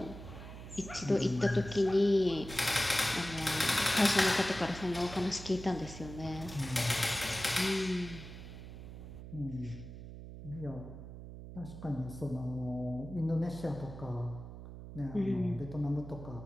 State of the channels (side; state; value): right; noise; hum, 12 dB below the sound